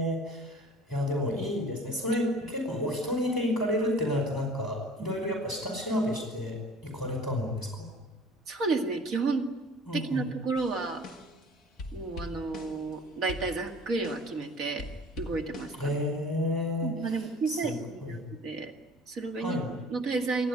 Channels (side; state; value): both; normal; correlation 0.47